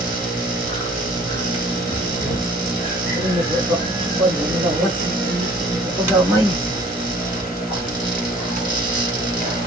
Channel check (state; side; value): normal; both; correlation 0.52